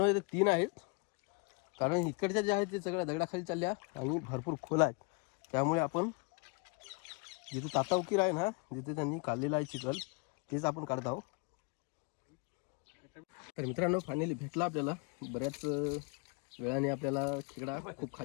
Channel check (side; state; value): right; quieter; 31.1 dB